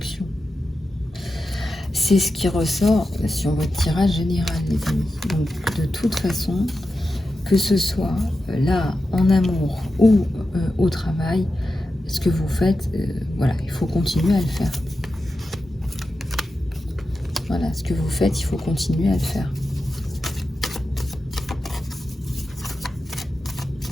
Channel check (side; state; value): both; normal; correlation 0.91